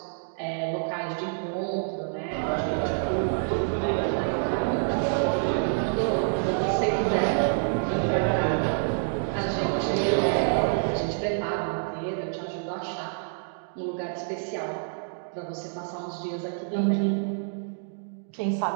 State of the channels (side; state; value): left; silent; digital silence